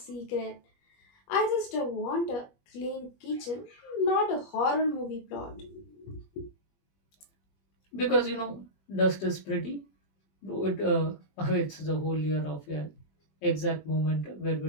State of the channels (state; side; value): late; right; 21 ms